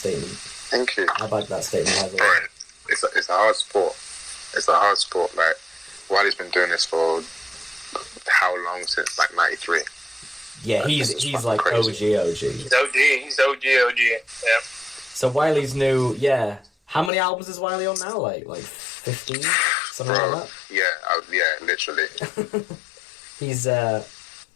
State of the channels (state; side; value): drops out; right; at 17.1 s